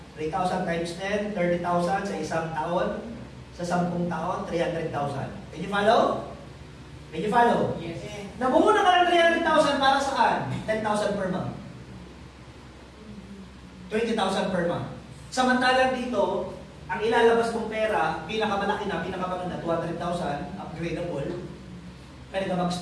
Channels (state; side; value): identical; both; correlation 1.00